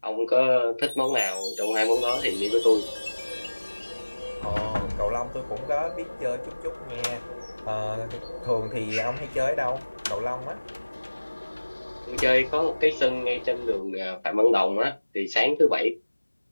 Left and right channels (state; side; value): inverted; both; correlation -1.00